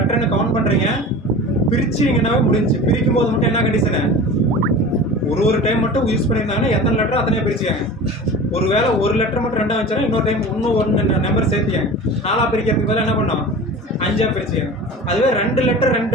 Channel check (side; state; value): both; normal; correlation 0.35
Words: கவுண்ட் பண்றீங்க, பிரிச்சிங்கன்னாவே முடிஞ்சு. பிரிக்கும் போது மட்டும் என்ன கண்டிஷனு? ஒரு டைம் மட்டும் யூஸ் பண்ணியிருந்தாங்கன்னா எத்தனை லெட்டர் அத்தனையா பிரிச்சுக்காங்க. ஒருவேளை ஒரு லெட்டர் மட்டும் 2ஆ வச்சாலும் இன்னொரு டைம் இன்னும் 1 நம்பர் சேர்த்தியாங்க. 4ஆ பிரிக்கிறதுக்கு பதிலாக என்ன பண்ணோம்? 5ஆ பிரிச்சுக்காங்க. அதுவே 2 லெட்டர்